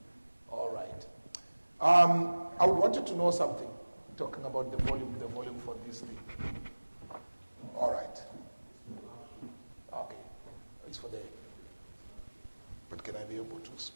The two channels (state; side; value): inverted; both; correlation -1.00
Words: All right. I would want you to know something, talking about the volume for this thing. All right. Okay. It's for there. But can I be able to